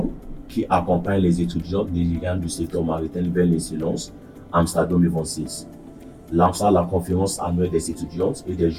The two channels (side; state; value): both; identical; correlation 1.00